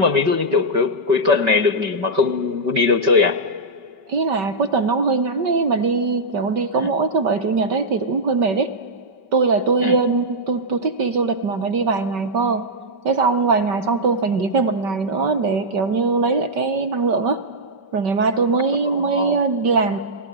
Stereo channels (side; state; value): left; late; 5.2 ms